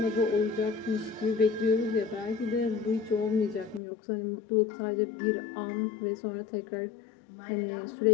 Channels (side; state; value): right; drops out; at 3.8 s